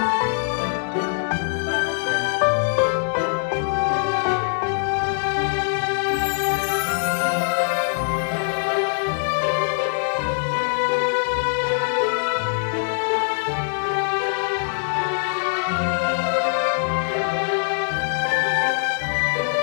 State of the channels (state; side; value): silent; right; digital silence